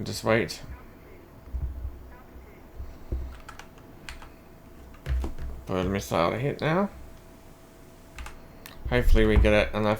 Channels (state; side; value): identical; both; correlation 1.00